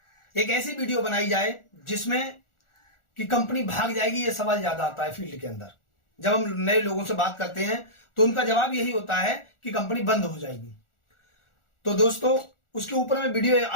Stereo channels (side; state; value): right; late; 1.4 ms